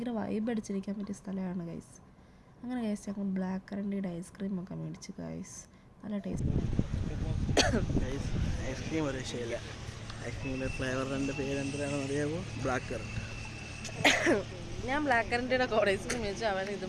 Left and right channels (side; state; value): both; identical; correlation 1.00